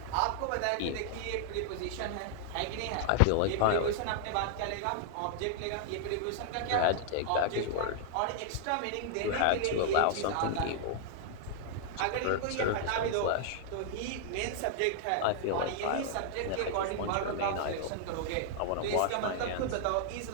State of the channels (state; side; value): different; both; correlation -0.01